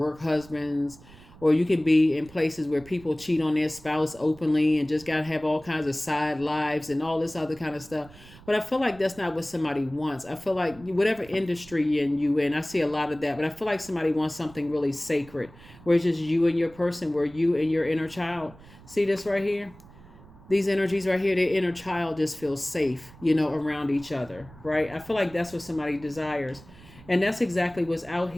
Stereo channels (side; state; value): right; noise; rumble, 22 dB below the sound